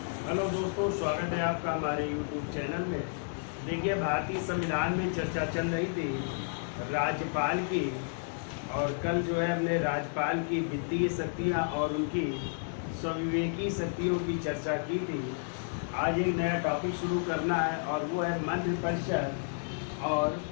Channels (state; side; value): silent; right; 57 dB below the other